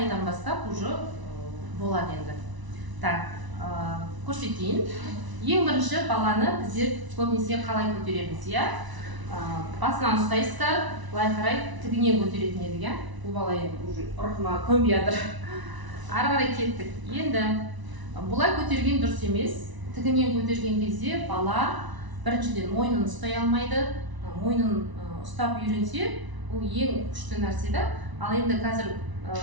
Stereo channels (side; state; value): left; late; 1.0 ms